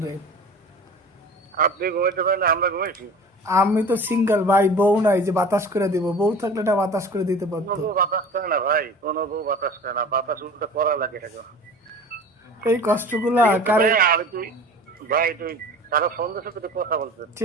আপনি ঘুমাইতে পারেন না, আমরা ঘুমাইছি। আমি তো সিঙ্গেল ভাই, বউ নাই যে বাতাস করে দিব। বউ থাকলে এটা বাতাস করে দিতে কোনো পারতো। বউ বাতাস করে না ভাই, কোনো বউ বাতাস করে না, বাতাস উল্টো করা লাগে থাকে। এই কষ্টগুলা ঠিক আছে ভাই, কারে। আর তুই ভাই, তুই কারো ফোন দিয়েছে, তুই কথা বলছিস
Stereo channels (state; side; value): normal; both; correlation 0.40